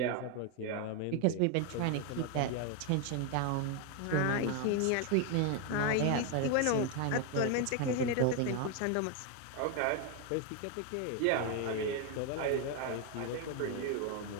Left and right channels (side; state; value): both; different; correlation 0.01